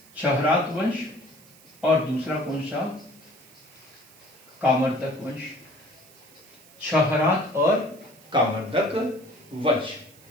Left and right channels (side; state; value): right; noise; hiss, 25 dB below the sound